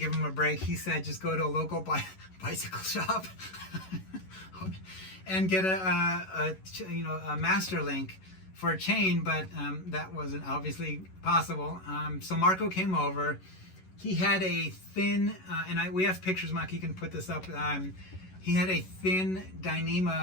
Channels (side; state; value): right; late; 11 ms